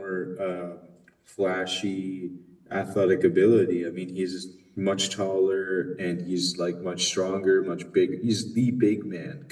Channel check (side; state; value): both; identical; correlation 1.00